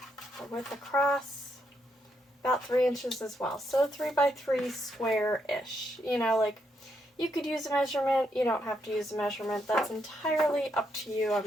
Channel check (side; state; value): both; normal; correlation 0.78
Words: the width across about 3 inches as well. So 3 by 3 square-ish. You know, like, you could use a measurement, you don't have to use a measurement. That's entirely up to you.